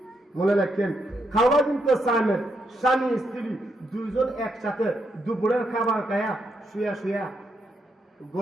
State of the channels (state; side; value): normal; both; correlation 0.79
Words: মনে রাখেন। খাওয়া কিন্তু সামেত, স্বামী স্ত্রী দুইজন একসাথে দুপুরের খাবার খায়া শুয়া শুয়া